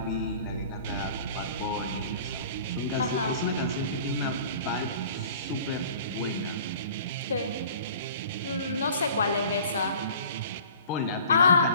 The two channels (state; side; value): inverted; both; correlation -0.47